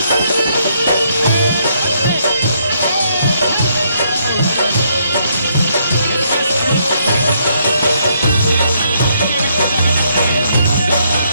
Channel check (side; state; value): both; inverted; correlation -0.72